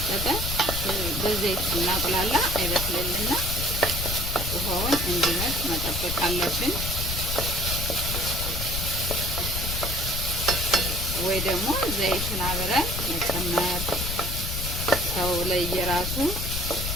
በዘይት ስናቁላላ አይበስልልና ውሃውን እንዲመጥ መጠበቅ አለብን። ወይ ደግሞ ዘይቱን አብረን መጨመር። ሰው ለየራሱ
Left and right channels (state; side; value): noise; left; rumble, 3 dB below the sound